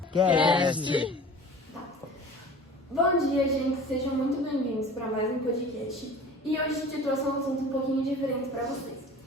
Cast. Bom dia, gente. Sejam muito bem-vindos para mais um podcast. E hoje a gente trouxe um assunto um pouquinho diferente para vocês.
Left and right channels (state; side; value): normal; both; correlation 0.42